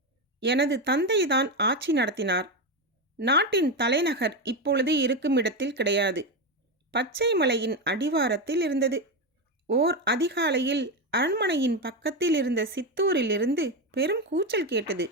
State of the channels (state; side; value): normal; both; correlation 0.12